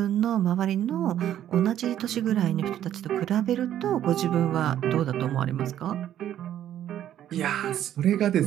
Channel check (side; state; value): left; quieter; 11.3 dB